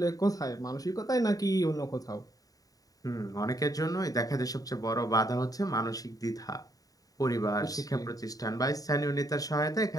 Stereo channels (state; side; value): late; right; 0.18 ms